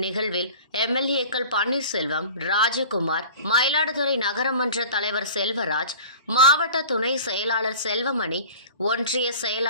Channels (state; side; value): inverted; both; correlation -0.41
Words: எம்எல்ஏக்கள் பன்னீர்செல்வம், ராஜகுமார், மயிலாடுதுறை நகரமன்ற தலைவர் செல்வராஜ், மாவட்ட துணை செயலாளர் செல்வமணி, ஒன்றிய